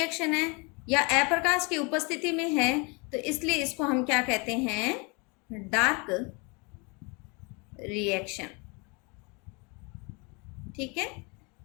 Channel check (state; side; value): quieter; right; 30.6 dB